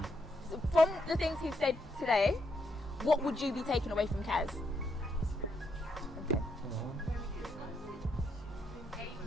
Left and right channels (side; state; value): both; normal; correlation 0.78